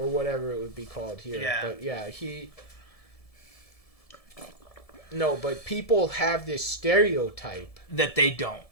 whatever it would be called here. Yeah. But, yeah, No, but people have this stereotype. That they don't.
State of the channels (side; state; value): right; late; 1.7 ms